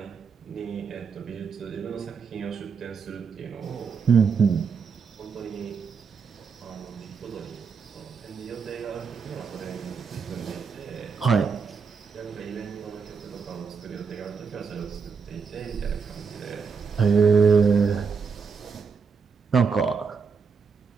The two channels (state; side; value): quieter; left; 5.6 dB